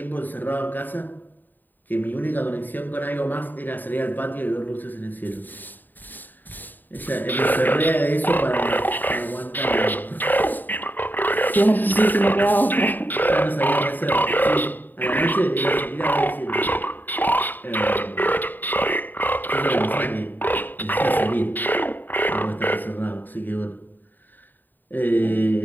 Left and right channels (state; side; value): late; right; 0.089 ms